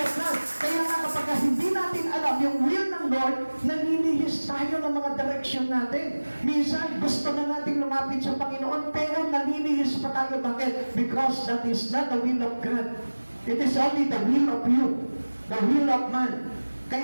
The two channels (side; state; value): both; inverted; correlation -1.00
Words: God. Kaya nga kapag hindi natin alam yung will ng Lord, naninihis tayo ng mga direction natin. Minsan, gusto na natin lumapit sa Panginoon, pero naninihis pa tayo. Bakit? Because that is not the will of God. It is only the will of you. The will of man.